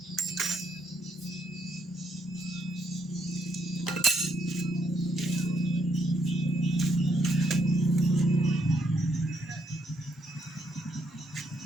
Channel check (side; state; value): both; normal; correlation 0.74